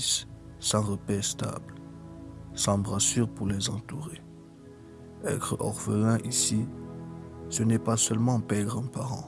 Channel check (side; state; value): both; identical; correlation 1.00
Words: sans repère stable, sans brassure pour les entourer. Être orphelin ici, ce n'est pas seulement perdre un